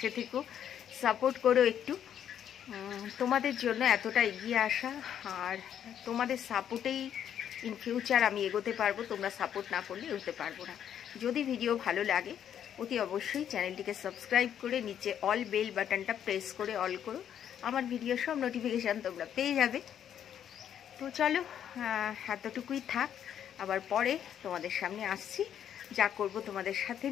থেকো, সাপোর্ট করো একটু। তোমাদের জন্য এতটা এগিয়ে আসা, আর তোমাদের সাপোর্টেই ইন ফিউচার আমি এগোতে পারবো। তোমরা সাপোর্ট না করলে এগোতে পারবো না। যদি ভিডিও ভালো লাগে অতি অবশ্যই চ্যানেলটিকে সাবস্ক্রাইব করে নিচে অল বেল বাটনটা প্রেস করে অল করো, আমার ভিডিও সব নোটিফিকেশান তোমরা পেয়ে যাবে। তো চলো এতটুকুই থাক, আবার পরে তোমাদের সামনে আসছি। যা করব তোমাদের সাথে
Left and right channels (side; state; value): right; quieter; 9.5 dB